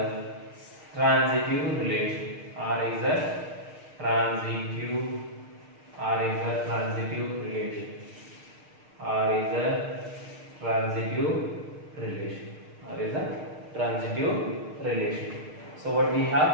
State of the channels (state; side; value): late; left; 6.6 ms